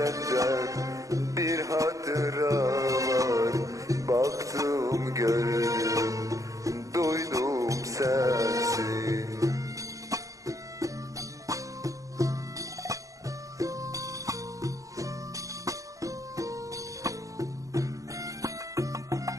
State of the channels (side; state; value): left; late; 0.16 ms